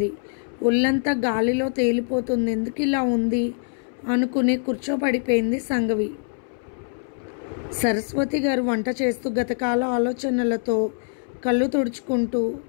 ఒళ్ళంతా గాలిలో తేలిపోతుంది. ఎందుకు ఇలా ఉంది అనుకుని కూర్చోపడిపోయింది సంఘవి. సరస్వతి గారు వంట చేస్తూ గతకాల ఆలోచనలతో కళ్ళు తుడుచుకుంటూ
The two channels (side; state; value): right; silent; 63 dB below the other